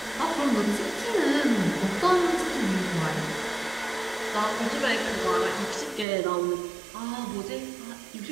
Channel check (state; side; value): drops out; left; at 6.1 s